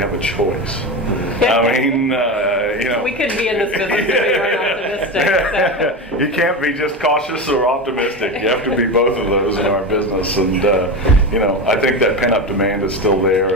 a choice. I mean, we couldn't be in this business if we weren't optimistic. So. You can't be just cautious or optimistic. You have to be both of those in our business. And, I think that pent-up demand is still there.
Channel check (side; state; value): both; normal; correlation 0.21